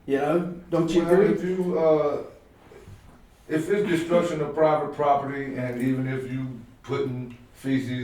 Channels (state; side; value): identical; both; correlation 1.00